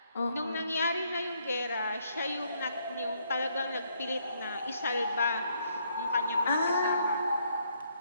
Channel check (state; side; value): inverted; both; correlation -0.71